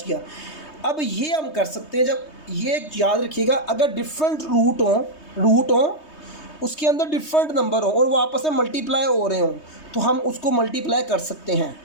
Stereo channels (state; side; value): late; right; 3.2 ms